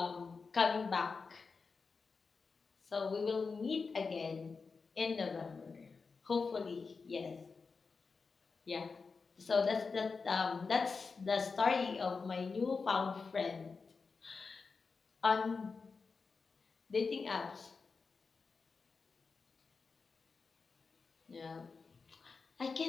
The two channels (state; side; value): quieter; right; 4.7 dB